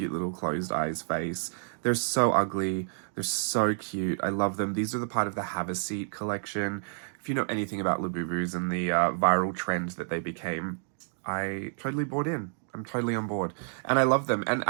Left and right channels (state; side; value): silent; left; digital silence